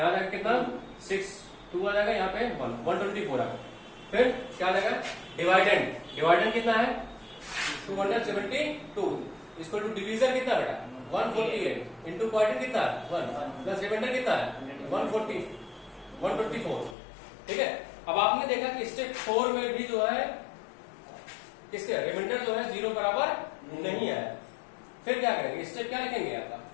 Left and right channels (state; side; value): drops out; right; at 16.9 s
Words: आएगा कितना 6, 2 आ जाएगा, यहाँ पे 124 आएगा। फिर क्या आ जाएगा, डिवाइडेंड कितना है 272, इसको टू डिवीजन कितना बेटा 148 इंटू क्वाड्रेंट कितना है 1 प्लस रिमाइंडर कितना है 124, ठीक है। अब आपने देखा कि स्टेप 4 में भी जो है किसके रिमाइंडर जो है 0 बराबर नहीं है। फिर क्या करेंगे, स्टेप क्या लिखेंगे आपका,